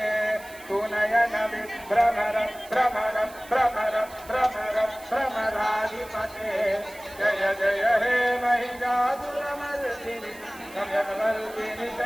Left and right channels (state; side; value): noise; right; hiss, 20 dB below the sound